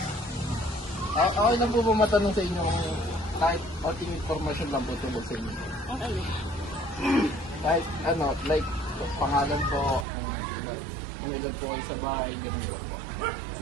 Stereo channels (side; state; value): left; drops out; at 10.1 s